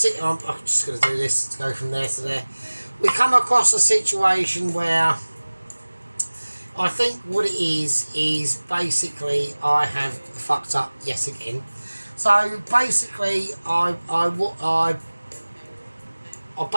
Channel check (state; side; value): inverted; both; correlation -1.00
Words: I'm just going to do this to go from there to there. We come across a situation where I think what it is basically I have fucked up yet again. So basically, I